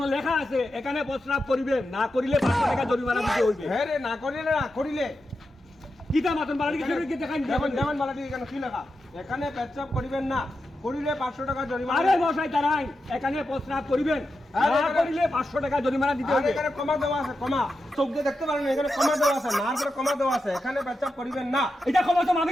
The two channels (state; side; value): normal; both; correlation 0.89